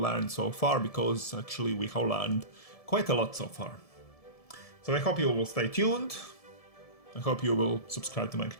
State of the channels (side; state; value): right; late; 1.7 ms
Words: so far, because actually we have learned quite a lot so far. So I hope you will stay tuned, I hope you will subscribe to my